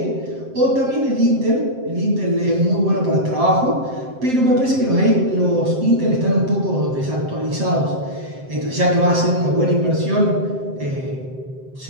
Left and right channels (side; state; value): left; late; 7.6 ms